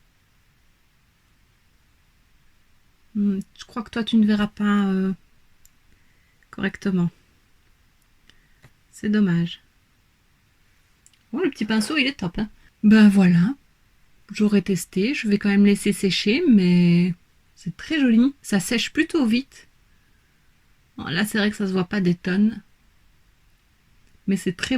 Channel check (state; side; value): identical; both; correlation 1.00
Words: Je crois que toi, tu ne verras pas correctement. C'est dommage. Oh, le petit pinceau, il est top, hein. Ben voilà. J'aurais testé. Je vais quand même laisser sécher, mais c'est très joli. Ça sèche plutôt vite. Bon, là, c'est vrai que ça se voit pas des tonnes. Mais c'est très